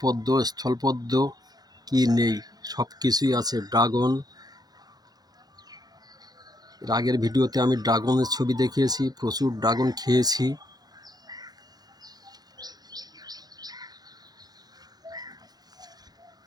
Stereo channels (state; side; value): late; left; 0.19 ms